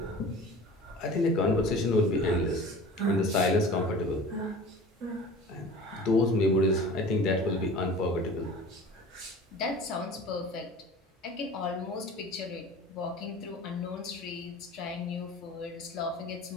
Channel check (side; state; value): both; normal; correlation 0.40